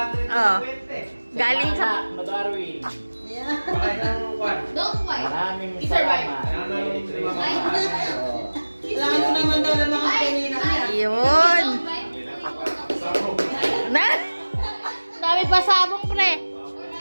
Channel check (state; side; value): inverted; both; correlation -1.00